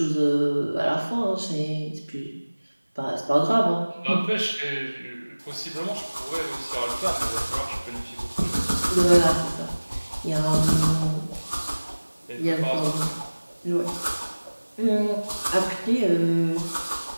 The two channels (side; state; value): both; inverted; correlation -1.00